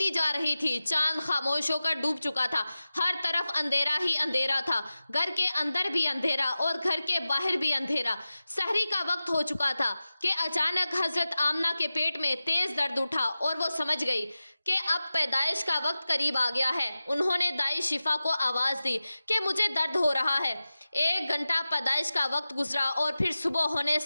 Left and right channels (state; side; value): inverted; both; correlation -0.95